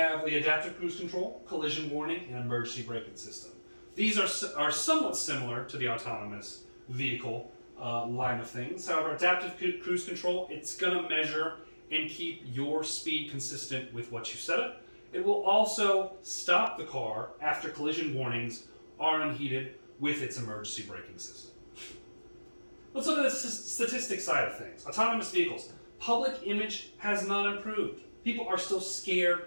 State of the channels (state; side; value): inverted; both; correlation -1.00